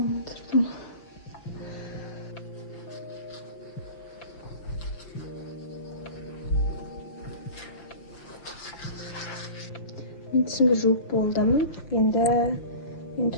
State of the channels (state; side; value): late; right; 5.9 ms